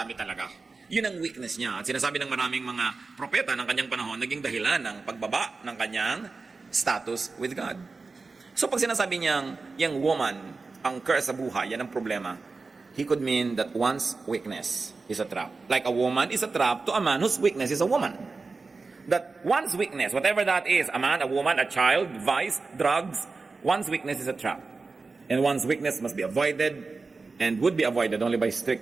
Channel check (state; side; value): quieter; left; 4.1 dB